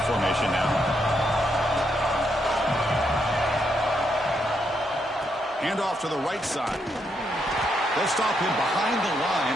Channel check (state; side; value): normal; both; correlation 0.78